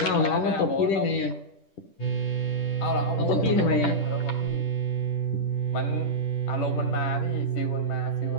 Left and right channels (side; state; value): right; late; 10 ms